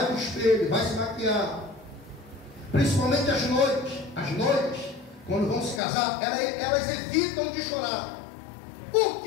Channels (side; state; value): right; drops out; at 5.8 s